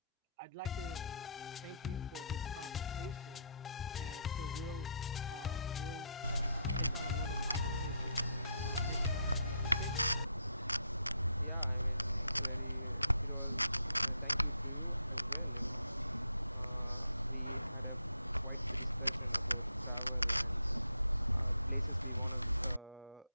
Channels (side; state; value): both; inverted; correlation -0.73